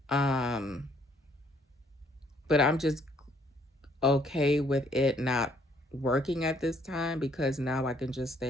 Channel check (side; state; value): both; normal; correlation 0.65